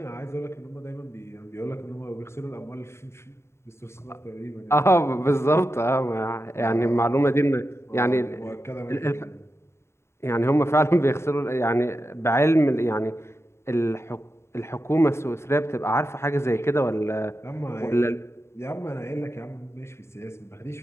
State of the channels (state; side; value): late; right; 0.13 ms